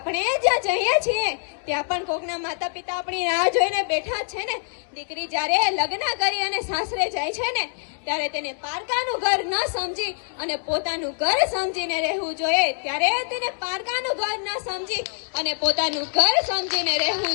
જ્યાં જઈએ છીએ ત્યાં પણ કોકના માતા પિતા આપણી રાહ જોઈને બેઠા છે ને। દીકરી જ્યારે લગ્ન કરી અને સાસરે જાય છે ને ત્યારે તેને પારકાનું ઘર ન સમજી અને પોતાનું ઘર સમજીને રહેવું જોઈએ। ત્યારે તેને પારકાનું ઘર ન સમજી અને પોતાનું ઘર સમજીને રહેવું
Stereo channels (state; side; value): silent; right; 62 dB below the other